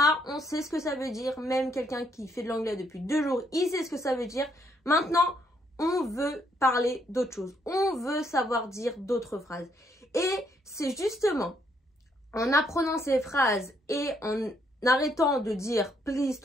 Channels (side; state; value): both; normal; correlation 0.72